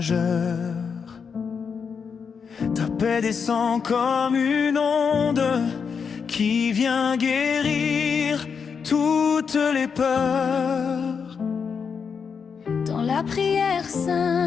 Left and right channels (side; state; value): right; quieter; 6.2 dB